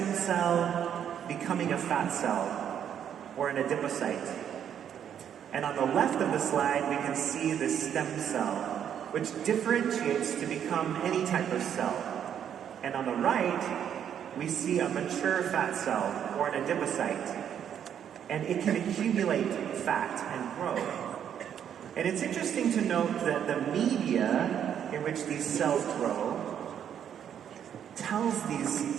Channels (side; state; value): left; quieter; 9.1 dB